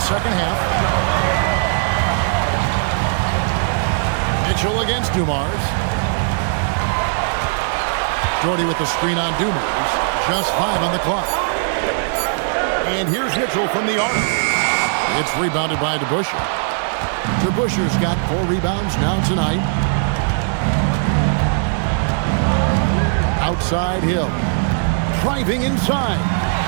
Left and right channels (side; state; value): left; silent; digital silence